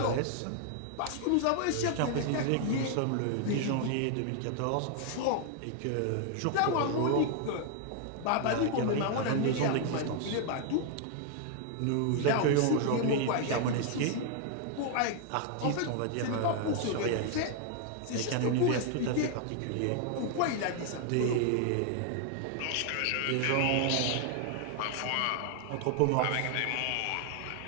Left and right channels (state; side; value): different; both; correlation 0.00